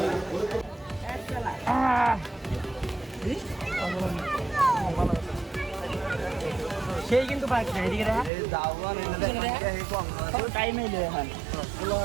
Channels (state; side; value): drops out; left; at 8.3 s